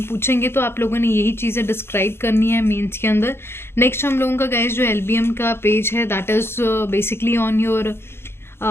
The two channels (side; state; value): right; late; 0.12 ms